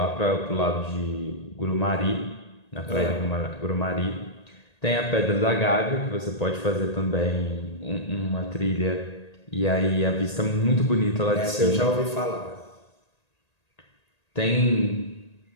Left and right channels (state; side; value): late; right; 1.8 ms